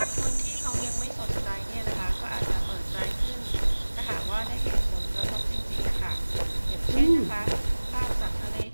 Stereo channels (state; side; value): inverted; both; correlation -1.00